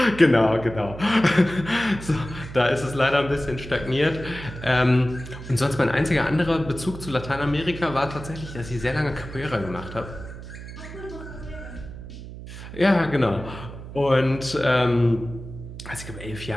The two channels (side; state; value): right; noise; hum, 12 dB below the sound